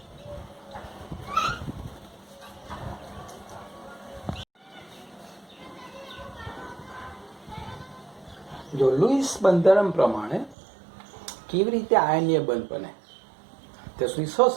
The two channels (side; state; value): left; drops out; at 10.6 s